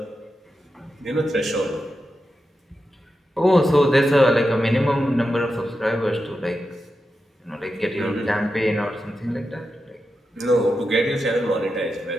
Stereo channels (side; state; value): both; normal; correlation 0.89